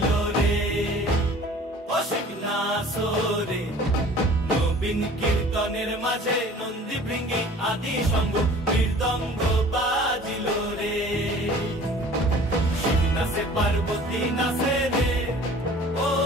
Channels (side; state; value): both; normal; correlation 0.47